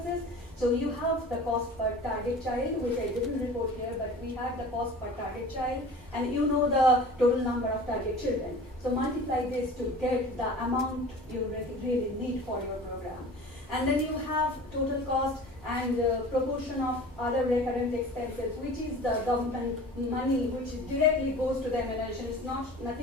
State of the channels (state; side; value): normal; both; correlation 0.41